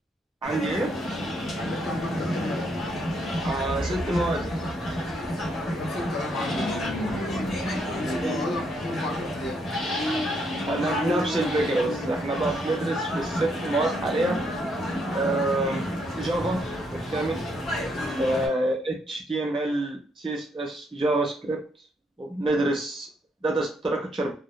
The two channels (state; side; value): normal; both; correlation 0.73